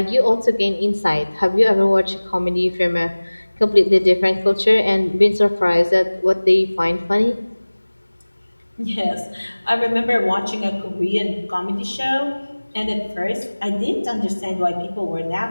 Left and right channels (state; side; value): inverted; both; correlation -1.00